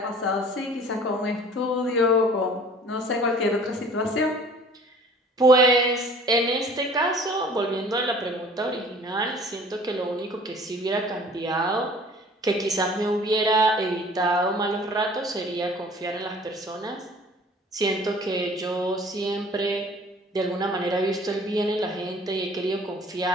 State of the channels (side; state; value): both; normal; correlation 0.50